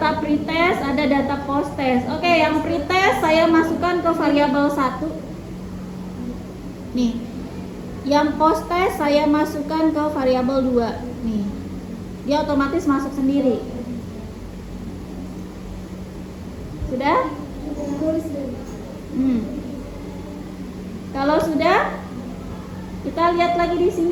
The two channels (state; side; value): identical; both; correlation 1.00